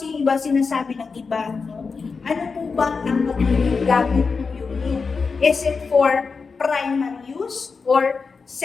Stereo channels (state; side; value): quieter; right; 4.9 dB